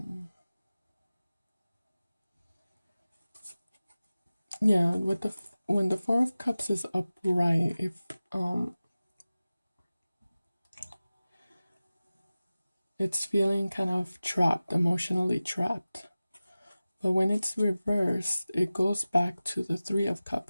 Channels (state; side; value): inverted; both; correlation -0.97